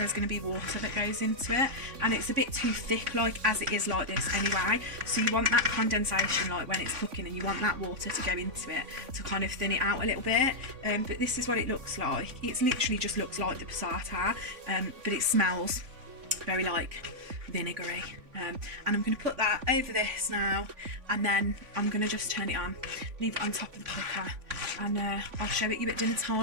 going to be water that goes into it, and it's a bit too thick like as it is like this anyway. So you want that condensation like when it's cooking, and you want that water to go into it to kind of thin it out a little bit. But this is what it looks like. It's literally just looks like the passata, but it smells very like vinegary. And I'm going to put that over this now, and then I'm going to just turn it on, leave it on top of the cooker, and I'll show it you at dinner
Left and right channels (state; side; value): late; left; 3.5 ms